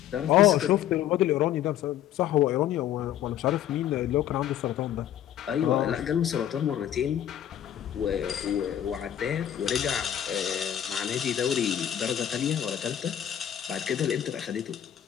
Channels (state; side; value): quieter; right; 10.8 dB